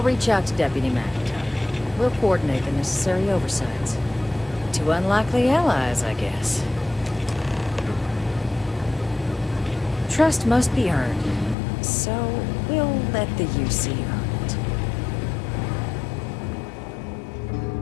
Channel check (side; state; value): right; drops out; at 11.6 s